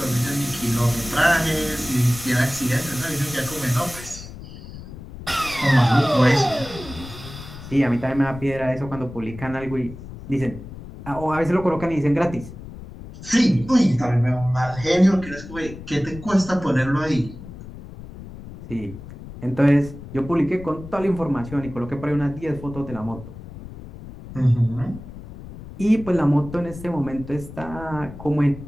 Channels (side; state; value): left; noise; rumble, 14 dB below the sound